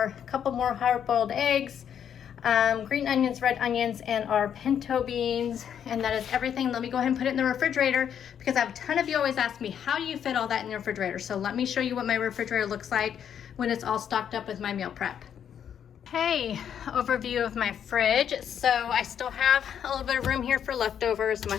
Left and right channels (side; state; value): right; quieter; 8.7 dB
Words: couple more hard-boiled eggs, green onions, red onions, and our pinto beans. And that is everything. Let me go ahead and put it in the refrigerator because I have a ton of you always ask me, how do you fit all that in the refrigerator? So let me show you what my refrigerator looks like when it's all stocked up with my meal prep. Hey, overview of my fridge. So I still have a little bit of room here for leftovers.